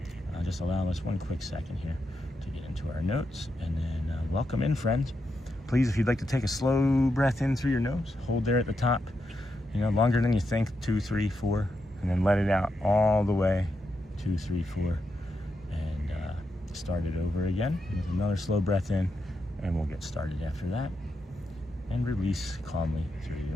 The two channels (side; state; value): both; normal; correlation 0.84